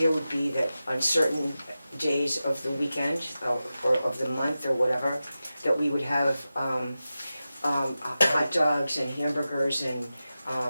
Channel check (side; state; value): both; inverted; correlation -0.93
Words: would be that on certain days of the weekend, or of the month, or whatever, that we would have hot dogs and hamburgers and